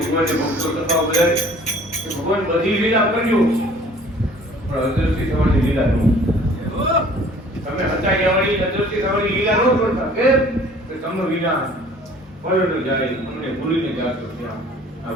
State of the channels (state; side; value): normal; both; correlation 0.52